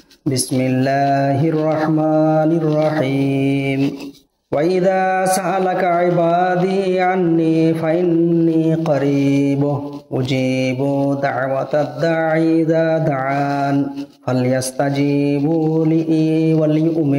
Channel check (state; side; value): identical; both; correlation 1.00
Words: বিসমিল্লাহির রাহমানির রাহিম وَإِذَا سَأَلَكَ عِبَادِي عَنِّي فَإِنِّي قَرِيبٌ أُجِيبُ دَعْوَةَ الدَّاعِ إِذَا دَعَانِ فَلْيَسْتَجِيبُوا لِي